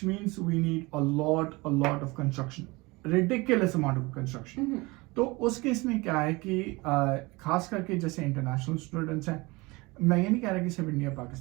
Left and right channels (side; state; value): left; quieter; 23.9 dB